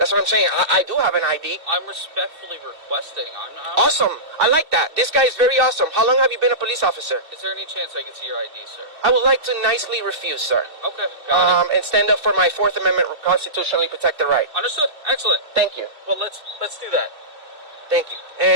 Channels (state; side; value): late; left; 2.6 ms